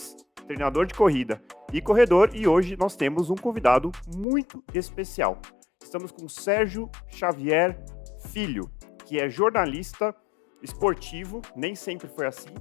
treinador de corrida e corredor, e hoje nós temos um convidado muito especial. Estamos com Sérgio Xavier Filho, que é jornalista esportivo, nem sempre foi assim,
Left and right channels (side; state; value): right; drops out; at 4.2 s